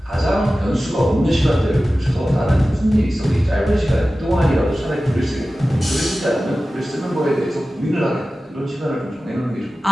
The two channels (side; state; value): both; normal; correlation 0.95